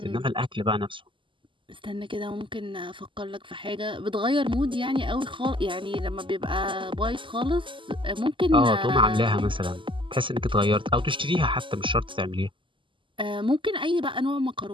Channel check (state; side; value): late; left; 0.25 ms